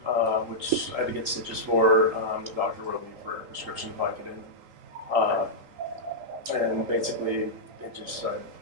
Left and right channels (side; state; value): left; late; 3.8 ms